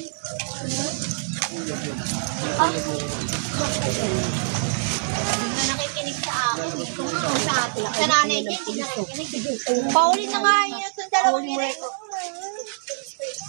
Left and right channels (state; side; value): silent; left; 62 dB below the other